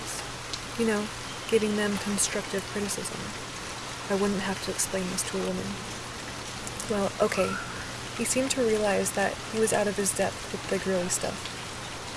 You know, giving them constructive criticism." I wouldn't have to explain this to a woman. "Well, okay." He seemed to realize that he was out of his depth with the girly stuff.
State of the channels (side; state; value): both; identical; correlation 1.00